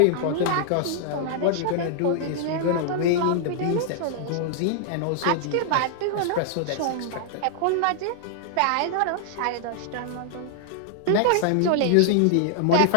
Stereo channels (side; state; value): both; different; correlation -0.01